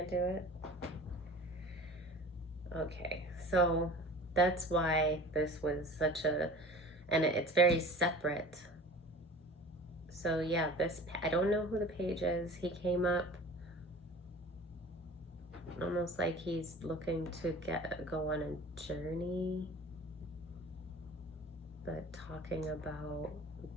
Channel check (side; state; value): both; normal; correlation 0.41